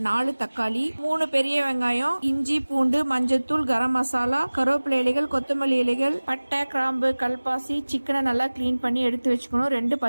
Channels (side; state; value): both; inverted; correlation -1.00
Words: 4 தக்காளி, 3 பெரிய வெங்காயம், இஞ்சி பூண்டு, மஞ்சத்தூள், கரம் மசாலா, கருவேப்பிலை இலைகள், கொத்தமல்லி இலைகள், பட்டை, கிராம்பு, கல்பாசி, சிக்கனை நல்லா கிளீன் பண்ணி எடுத்து வச்சுக்கணும். 2